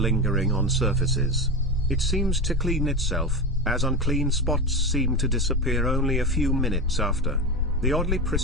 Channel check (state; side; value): normal; both; correlation 0.20